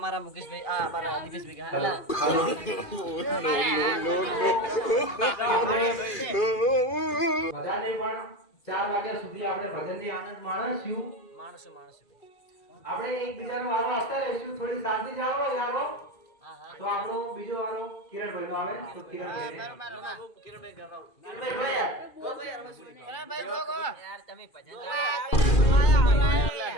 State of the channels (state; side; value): late; right; 2.4 ms